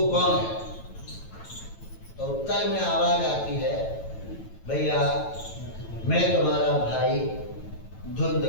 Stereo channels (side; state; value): right; late; 9.1 ms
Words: कौन है? तो उत्तर में आवाज आती है, भैया मैं तुम्हारा भाई